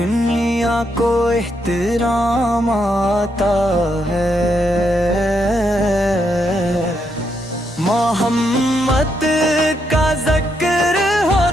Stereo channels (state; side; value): normal; both; correlation 0.78